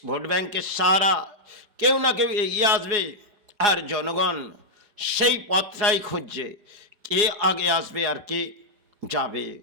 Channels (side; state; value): left; late; 4.9 ms